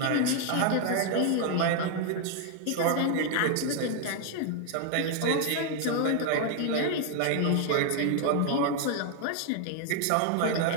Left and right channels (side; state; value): both; different; correlation 0.00